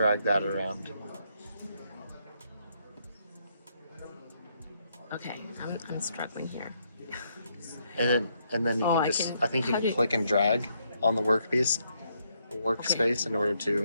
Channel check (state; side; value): inverted; both; correlation -0.75